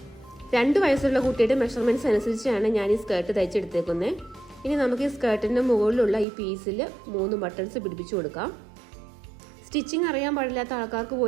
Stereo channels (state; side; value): drops out; left; at 6.2 s